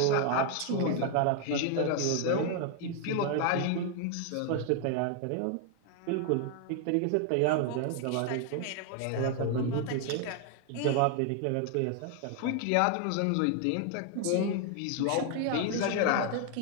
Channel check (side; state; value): both; different; correlation 0.00